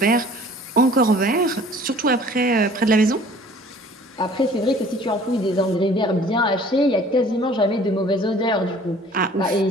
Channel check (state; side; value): normal; both; correlation 0.51